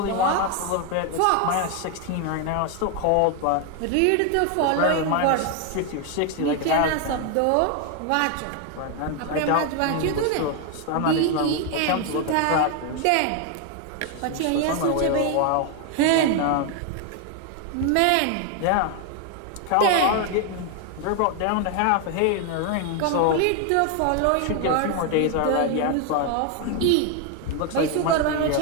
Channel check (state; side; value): different; both; correlation 0.01